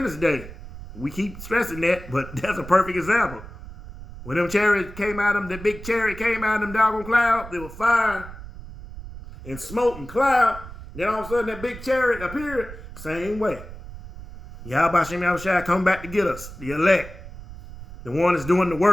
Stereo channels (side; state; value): right; noise; rumble, 14 dB below the sound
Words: Day. We keep stressing that, but that's a perfect example. When them chariots came out of them, the big chariot came out of them doggone clouds, there was fire and smoke and cloud. Then all of a sudden that big chariot appeared, same way. Yahweh Shem Yahushua come back to get us, the elect. The one that's doing the